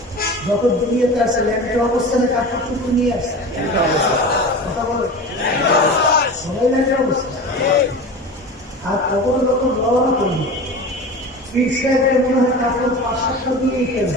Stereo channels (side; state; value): both; normal; correlation 0.32